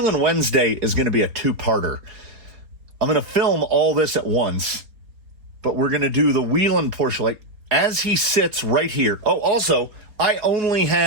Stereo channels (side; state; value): left; late; 4.3 ms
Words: Wednesday is going to be a two-parter. I'm going to film all this at once, but we're going to do the Wheelin portion, like, as he sits right here. Oh, also, I only